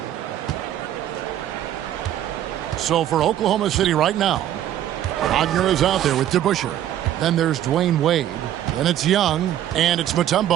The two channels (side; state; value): left; quieter; 11.7 dB